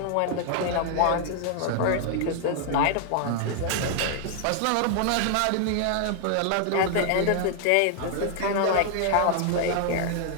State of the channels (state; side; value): different; both; correlation 0.00